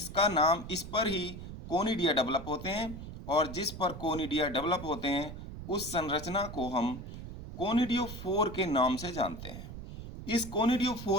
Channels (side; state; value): right; noise; rumble, 11 dB below the sound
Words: नाम, इस पर ही कोनिडिया डेवलप होते हैं और जिस पर कोनिडिया डेवलप होते हैं उस संरचना को हम कोनिडियोफोर के नाम से जानते हैं। इस